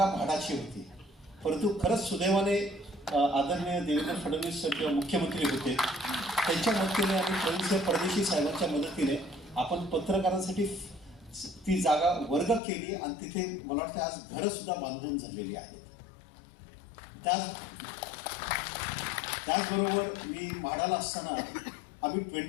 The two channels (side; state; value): right; drops out; at 12.6 s